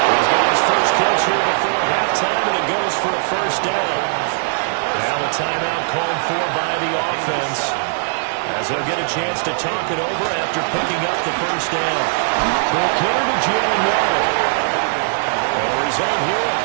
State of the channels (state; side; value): silent; left; 56 dB below the other